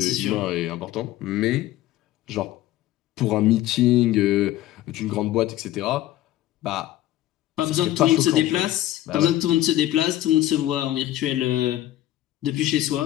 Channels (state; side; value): quieter; right; 14.2 dB